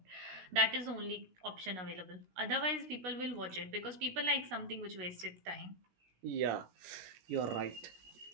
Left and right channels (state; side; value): late; left; 16 ms